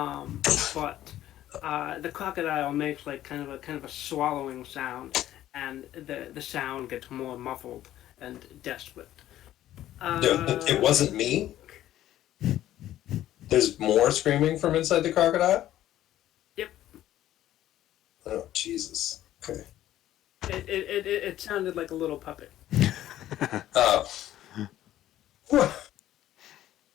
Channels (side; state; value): right; quieter; 13.1 dB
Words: the crocodile makes like kind of a swallowing sound, and the sound gets more muffled and desperate. It wasn't me. There's more screaming from inside the crocodile? Yep. Oh, Jesus. Okay. It sounded like a little puppet. Oh.